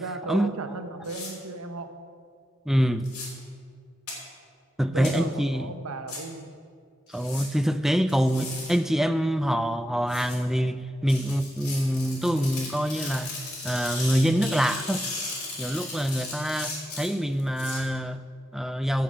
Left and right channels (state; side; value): normal; both; correlation 0.88